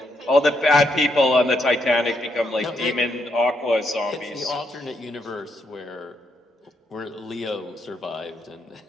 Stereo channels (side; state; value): both; normal; correlation 0.78